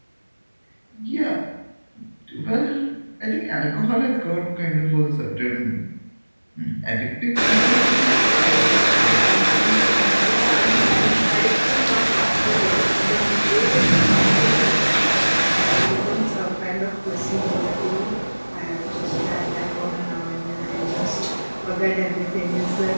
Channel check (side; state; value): both; inverted; correlation -1.00